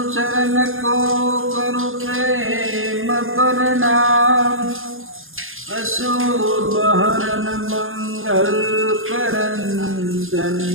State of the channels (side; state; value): left; late; 0.60 ms